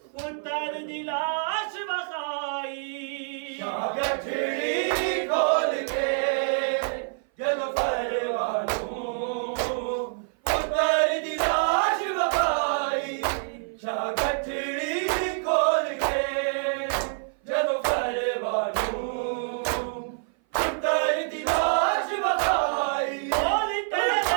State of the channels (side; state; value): left; silent; 57 dB below the other